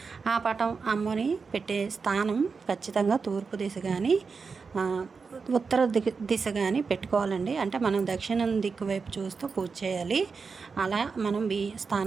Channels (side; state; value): left; quieter; 5.0 dB